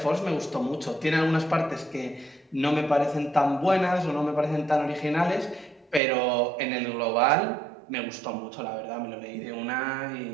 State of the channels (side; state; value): left; drops out; at 6.0 s